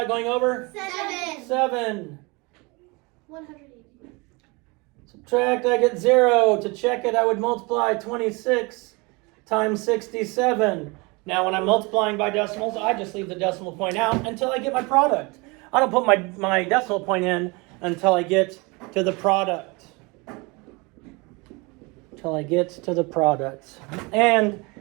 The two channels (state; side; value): quieter; left; 27.1 dB